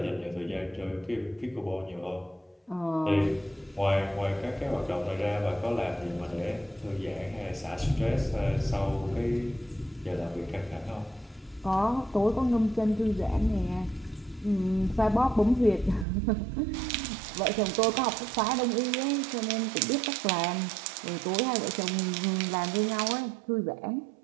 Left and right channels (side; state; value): left; drops out; at 16.1 s